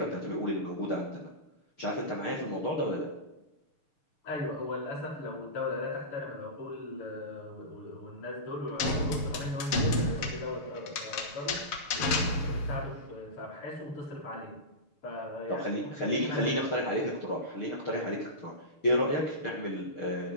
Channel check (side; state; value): right; late; 6.7 ms